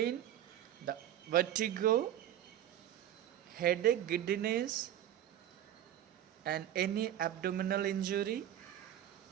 the vertigo, headache, giddiness, and any abdominal injury.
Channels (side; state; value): left; quieter; 11.6 dB